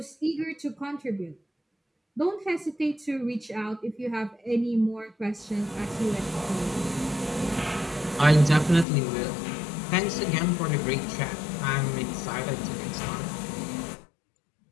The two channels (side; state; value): right; drops out; at 8.8 s